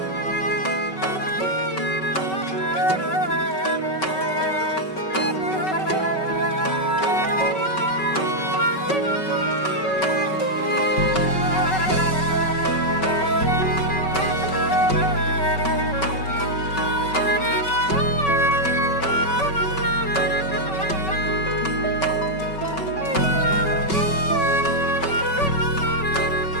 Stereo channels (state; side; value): late; right; 5.3 ms